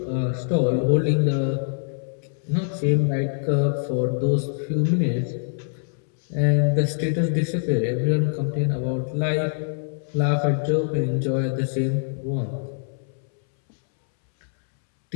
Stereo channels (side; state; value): right; silent; 63 dB below the other